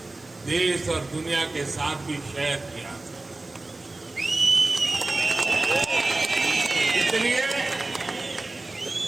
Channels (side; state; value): left; quieter; 3.0 dB